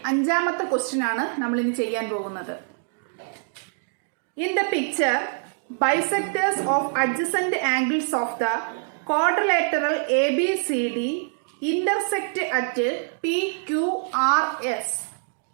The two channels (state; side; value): silent; left; digital silence